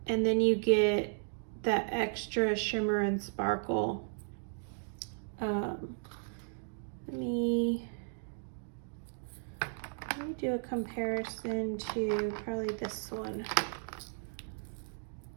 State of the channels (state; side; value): silent; left; digital silence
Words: and then you get that extra shimmer and sparkle. Let me do a comparison to probably this one.